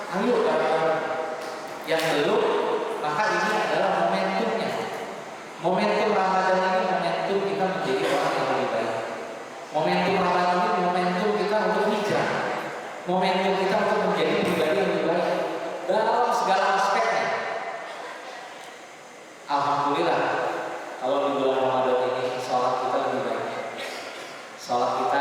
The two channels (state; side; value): identical; both; correlation 1.00